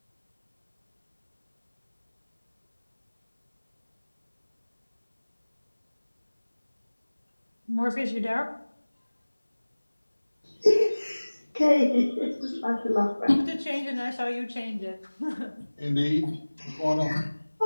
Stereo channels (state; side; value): inverted; both; correlation -1.00